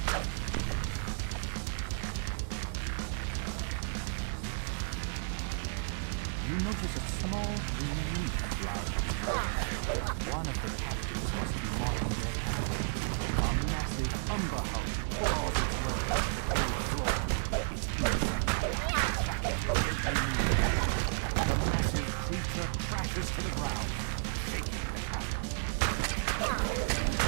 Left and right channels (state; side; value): silent; left; digital silence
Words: You notice a small green leaf flower. One of the captives must be marking their path. A massive umber hug claws its way up the cold floor. Its crashes to the ground, shaking the cabin.